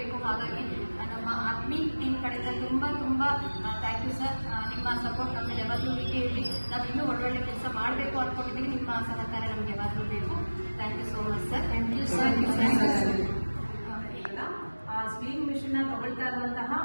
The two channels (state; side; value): inverted; both; correlation -1.00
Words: ಹಾಗಾಗಿ ನಮ್ಮ ಆತ್ಮೀಯ ಟೀಮ್ ಕಡೆಯಿಂದ ತುಂಬ ಥ್ಯಾಂಕ್ ಯು ಸರ್. ನಿಮ್ಮ ಸಪೋರ್ಟ್ ನಮಗೆ ಯಾವಾಗಲೂ ಹೀಗೆ ಇರಲಿ. ನಾವು ಇನ್ನೂ ಒಳ್ಳೊಳ್ಳೆ ಕೆಲಸ ಮಾಡಬೇಕು ಅಂದ್ಕೊಂಡಿದ್ದೀವಿ. ನಿಮ್ಮ ಸಹಕಾರ ನಮಗೆ ಯಾವಾಗಲೂ ಬೇಕು. Thank you so much sir. Thank you sir. ಆ ಸ್ವಿಂಗ್ ಮಿಷನ್ ತಗೊಳ್ತಾ ಇರುವಂತಹ